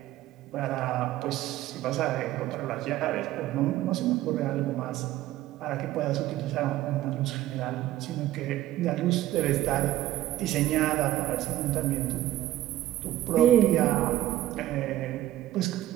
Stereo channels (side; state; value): left; quieter; 14.4 dB